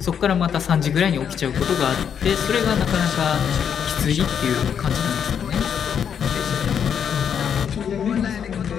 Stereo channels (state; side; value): quieter; right; 7.9 dB